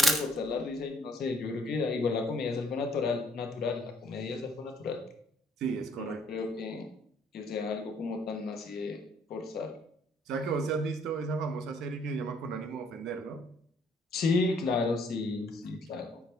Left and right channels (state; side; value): normal; both; correlation 0.64